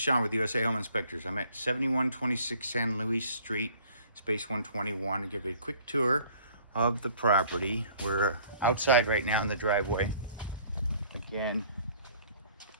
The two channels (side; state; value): both; inverted; correlation -0.55